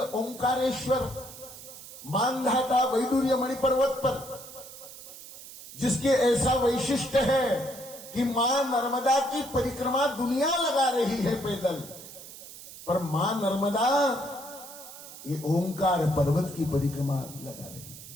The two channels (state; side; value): noise; right; hiss, 15 dB below the sound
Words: मानधाता वैडूर्य मणि पर्वत पर, जिसके ऐसा वैशिष्ट्य है कि मां नर्मदा की परिक्रमा दुनिया लगा रही है पैदल, पर मां नर्मदा ये ओंकार पर्वत की परिक्रमा लगा रही है